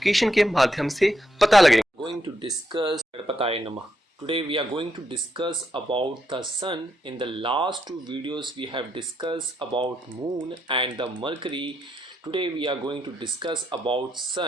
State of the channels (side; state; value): both; normal; correlation 0.80